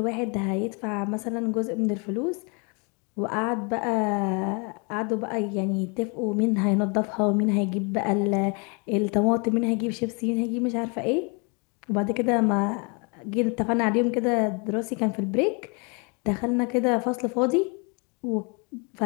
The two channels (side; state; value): right; quieter; 33.5 dB